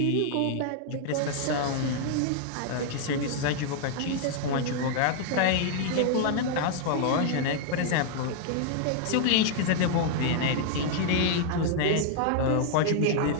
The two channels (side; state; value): both; different; correlation 0.00